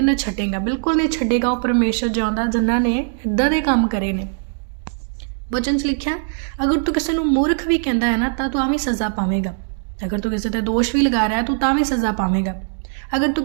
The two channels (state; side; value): silent; left; digital silence